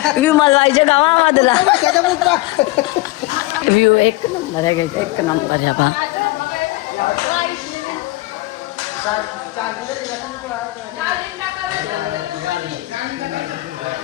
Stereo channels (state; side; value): quieter; right; 20.0 dB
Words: विमल व्हायच्या गावामधला व्ह्यू एक नंबर आहे घ्यायचा एक नंबर आहे बा